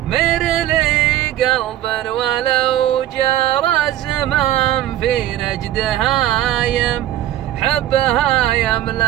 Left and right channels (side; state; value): left; quieter; 13.0 dB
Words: مر لي قلبا ولو جرى الزمان في نجد هايم، حبها